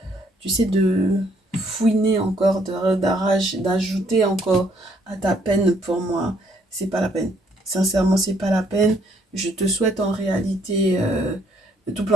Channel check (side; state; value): both; normal; correlation 0.67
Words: tu sais, de fouiner encore, d'ajouter encore à ta peine pour moi. C'est pas la peine. Sincèrement, c'est pas la peine. Je te souhaite en réalité tout